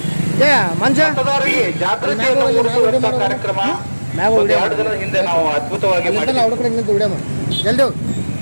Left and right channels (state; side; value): inverted; both; correlation -1.00